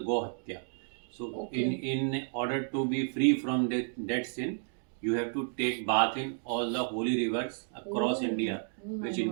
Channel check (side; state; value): left; silent; digital silence